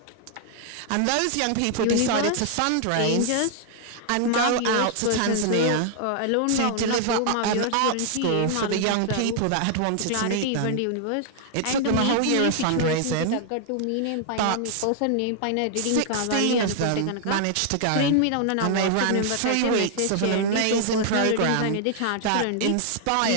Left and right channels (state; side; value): different; both; correlation 0.00